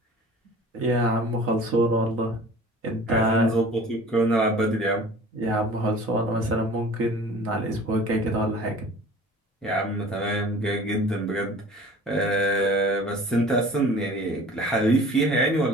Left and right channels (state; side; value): normal; both; correlation 0.45